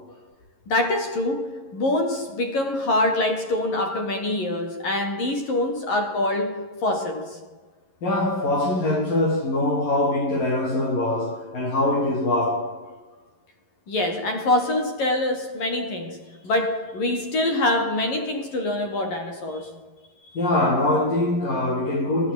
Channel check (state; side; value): late; right; 11 ms